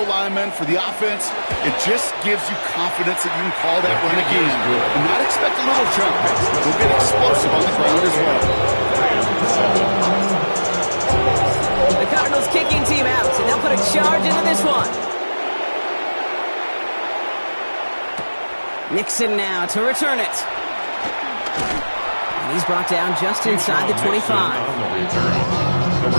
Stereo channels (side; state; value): both; inverted; correlation -1.00